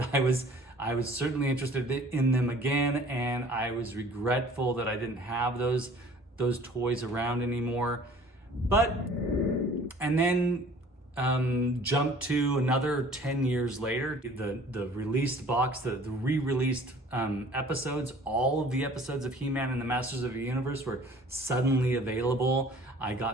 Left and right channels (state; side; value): normal; both; correlation 0.50